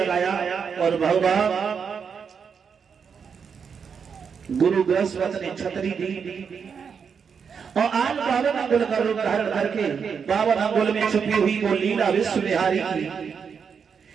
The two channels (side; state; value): left; quieter; 6.4 dB